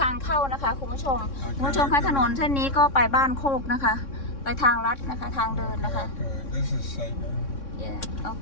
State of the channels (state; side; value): late; right; 3.6 ms